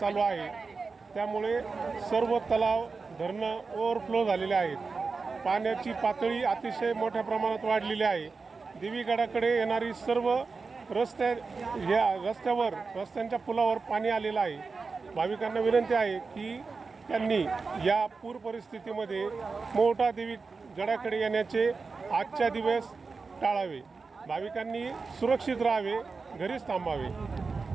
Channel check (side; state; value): left; quieter; 4.5 dB